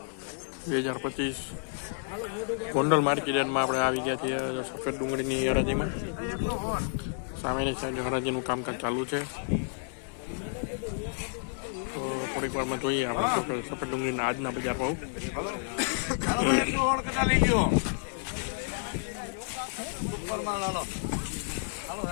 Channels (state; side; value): silent; right; 58 dB below the other